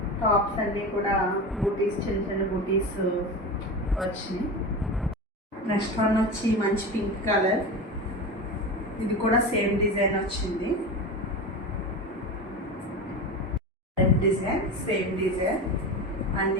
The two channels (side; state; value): both; normal; correlation 0.26